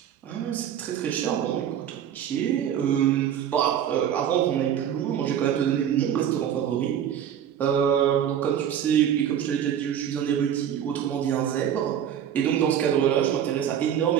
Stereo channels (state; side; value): quieter; left; 9.5 dB